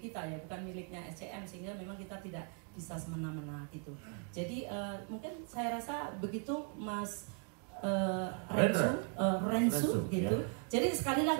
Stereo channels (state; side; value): quieter; left; 37.6 dB